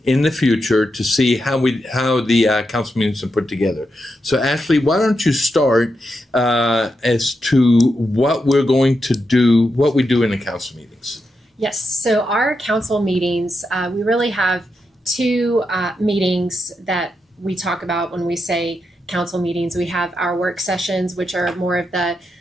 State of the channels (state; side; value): normal; both; correlation 0.85